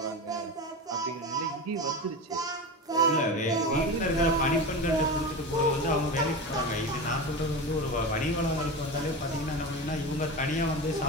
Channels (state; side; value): normal; both; correlation 0.25